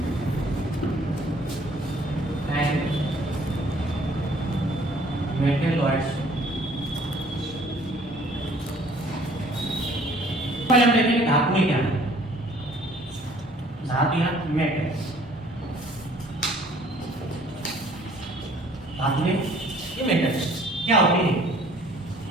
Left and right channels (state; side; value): normal; both; correlation 0.56